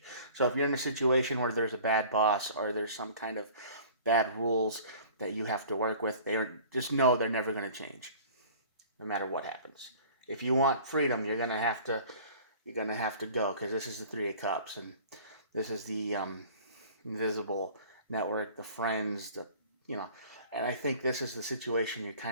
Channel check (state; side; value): inverted; both; correlation -0.46